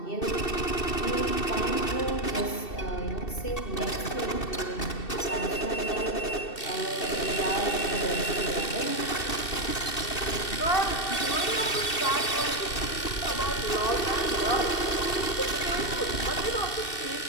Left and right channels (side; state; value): right; late; 2.7 ms